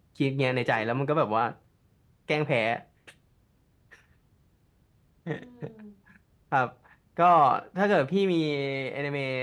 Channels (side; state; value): both; identical; correlation 1.00